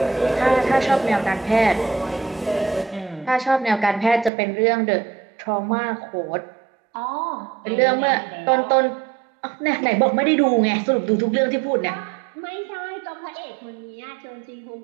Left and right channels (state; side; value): drops out; left; at 4.3 s